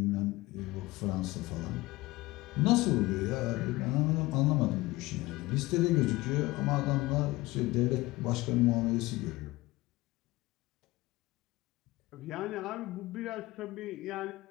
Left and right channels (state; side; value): quieter; right; 20.0 dB